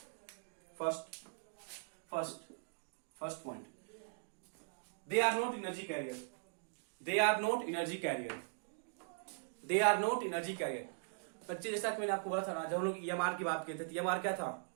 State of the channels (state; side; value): silent; left; digital silence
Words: First point, they are not energy carrier. They are not energy carrier. They are not energy carrier. बच्चे जैसा कि मैंने आपको बोला था ना, जब हम लोग EMR की बात करते थे, EMR क्या था,